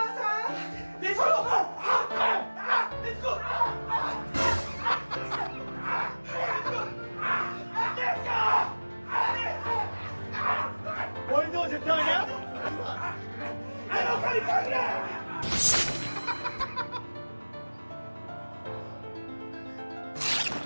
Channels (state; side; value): inverted; both; correlation -1.00